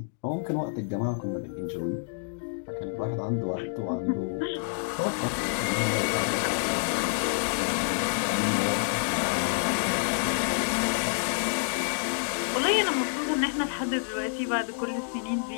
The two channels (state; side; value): silent; right; digital silence